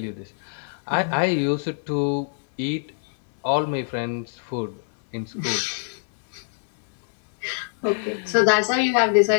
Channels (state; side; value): silent; right; digital silence